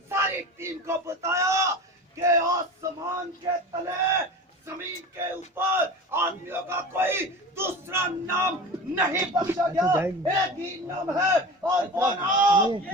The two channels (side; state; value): both; normal; correlation 0.33